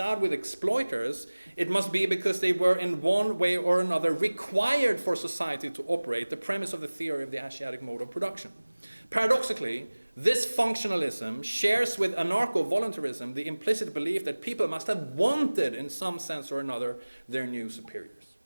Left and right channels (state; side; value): inverted; both; correlation -1.00